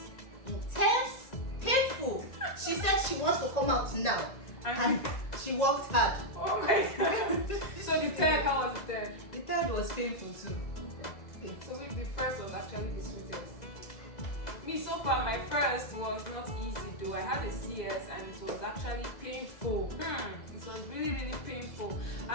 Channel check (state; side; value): late; right; 2.0 ms